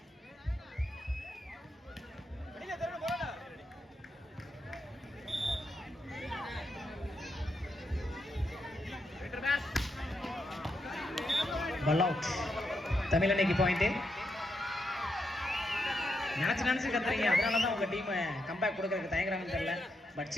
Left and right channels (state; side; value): normal; both; correlation 0.82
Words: Ball out. தமிழனைக்கு பாயிண்ட். நினைச்சு கத்துறீங்க, அதனால தான் உங்க டீம் கம்பேக் கொடுக்கறதுக்கு தயங்குறாங்கன்னு தெரியல. But